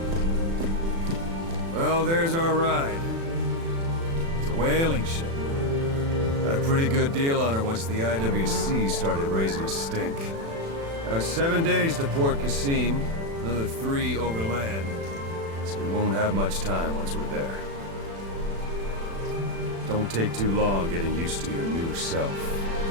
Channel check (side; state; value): left; late; 36 ms